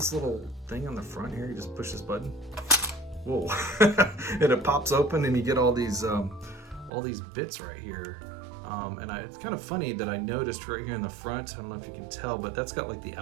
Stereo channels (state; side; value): drops out; left; at 6.9 s